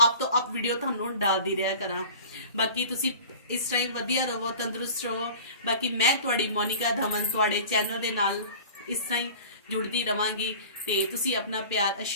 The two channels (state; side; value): inverted; both; correlation -0.41